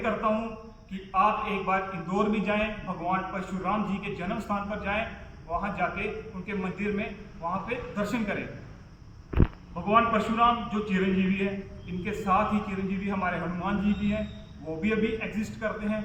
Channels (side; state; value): both; identical; correlation 1.00